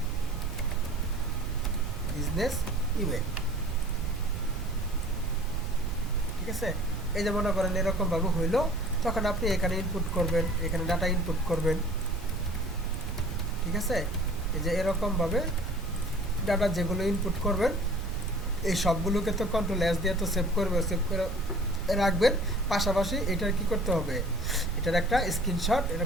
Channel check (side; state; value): both; normal; correlation 0.48